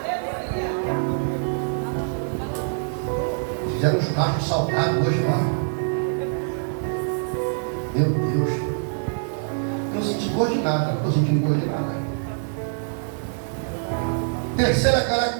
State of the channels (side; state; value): left; silent; 62 dB below the other